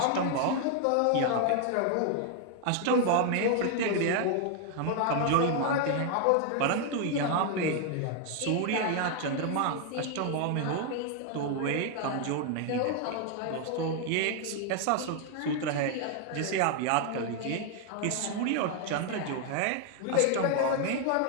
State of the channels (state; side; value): different; both; correlation 0.00